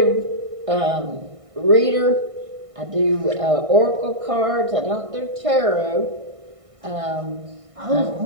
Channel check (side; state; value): left; late; 1.6 ms